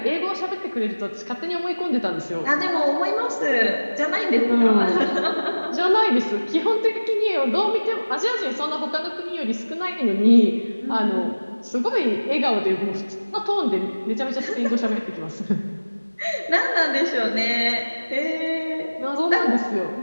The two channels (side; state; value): both; inverted; correlation -1.00